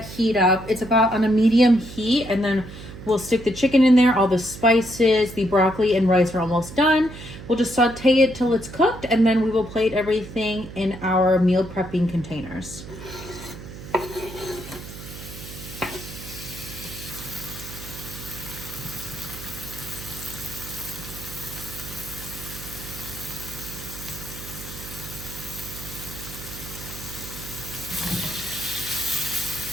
heat up. It's about on a medium heat, and then we'll stick the chicken in there. All the spices, the broccoli and rice are almost done. We'll just saute it till it's cooked, and then we will plate everything in our meal prepping containers.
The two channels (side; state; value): right; noise; hum, 13 dB below the sound